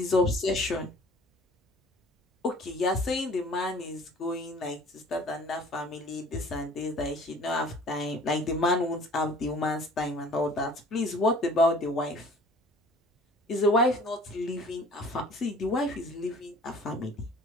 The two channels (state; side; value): normal; both; correlation 0.50